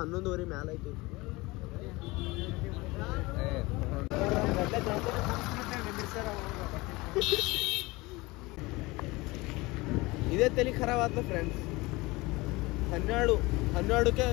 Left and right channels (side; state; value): right; quieter; 22.4 dB